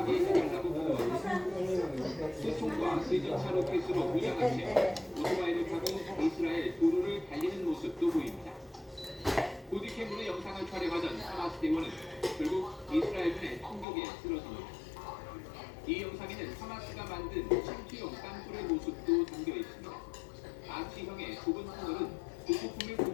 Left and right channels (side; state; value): right; drops out; at 13.9 s